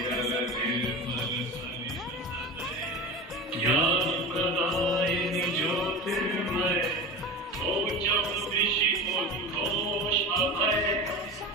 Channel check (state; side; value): normal; both; correlation 0.29